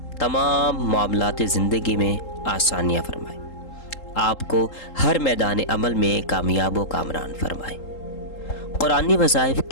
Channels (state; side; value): late; right; 3.8 ms